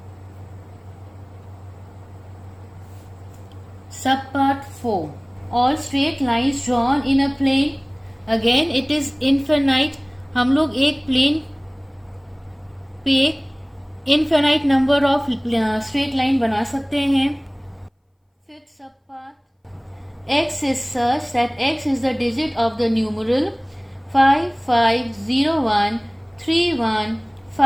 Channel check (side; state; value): both; identical; correlation 1.00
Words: Sub part 4, all straight lines drawn in a plane, again it is infinite. हम लोग एक plane पे infinite number of straight line बना सकते हैं. Fifth sub part, x is such that x is the digit of the numeral